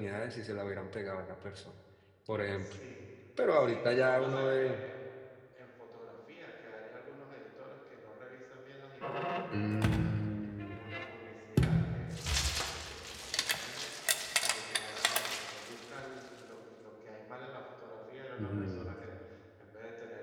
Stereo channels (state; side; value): identical; both; correlation 1.00